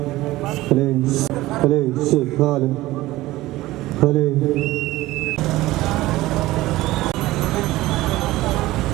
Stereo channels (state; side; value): quieter; left; 17.6 dB